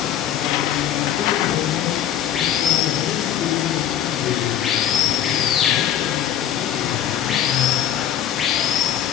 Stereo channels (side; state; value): right; quieter; 10.4 dB